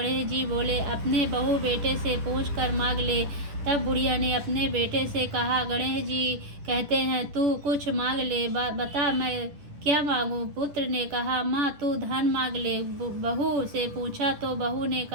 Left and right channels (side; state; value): left; late; 10 ms